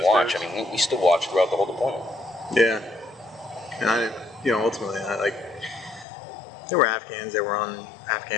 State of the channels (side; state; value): right; drops out; at 6.1 s